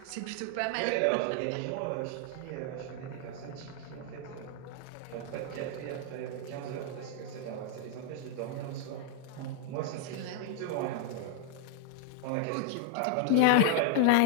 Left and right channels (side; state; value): both; different; correlation 0.00